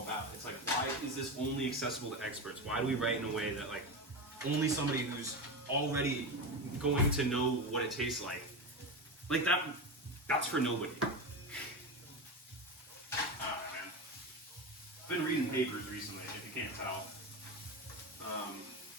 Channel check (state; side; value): normal; both; correlation 0.20